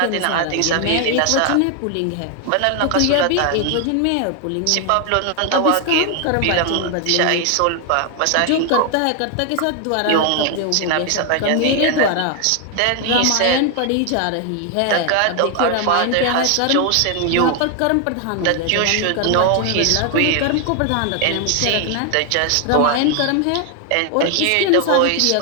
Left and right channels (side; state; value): both; different; correlation 0.00